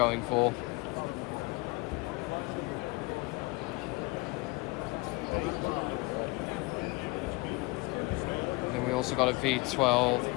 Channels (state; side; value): quieter; right; 25.4 dB